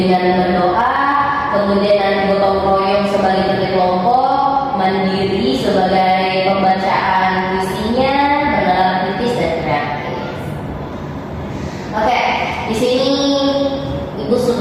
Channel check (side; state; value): both; identical; correlation 1.00